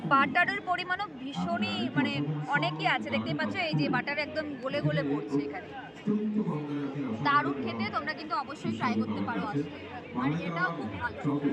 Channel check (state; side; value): identical; both; correlation 1.00